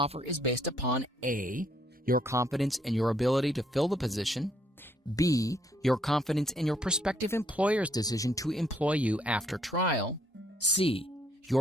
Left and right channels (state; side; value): normal; both; correlation 0.69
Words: is based upon A. Your confidence in your ability to fill the position. B. Your confidence in your prospective employer's decision to employ you after trial. C.